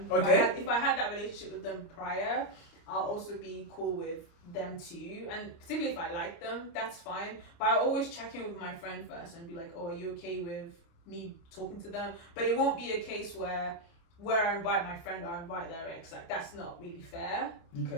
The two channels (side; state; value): right; late; 29 ms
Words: Okay. If I had that relationship with them prior, I'll also be cool with them too. And particularly if I like them, that's fine. But I always check in with my friend first and be like, oh, are you okay with me talking to them? But it won't be a case where I invite my friend or I invite their ex. Like, that's not really fair.